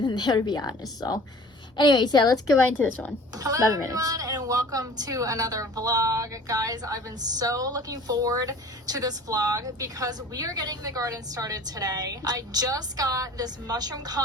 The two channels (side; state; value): both; normal; correlation 0.46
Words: there, to be honest. So anyways, yeah, let's get right into this one. Hello everyone, and welcome to another vlog. Guys, I've been so looking forward to this vlog because we are getting the garden started today. I just got this mushroom